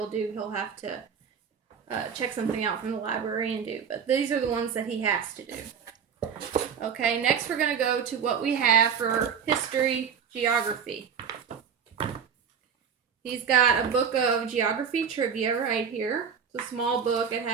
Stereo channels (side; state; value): left; quieter; 7.0 dB